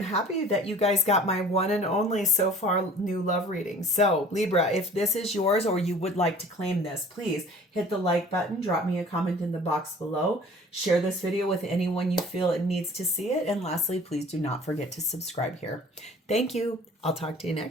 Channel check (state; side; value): normal; both; correlation 0.47